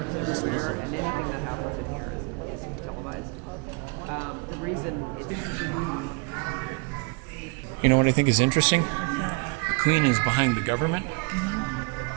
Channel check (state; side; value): quieter; left; 30.1 dB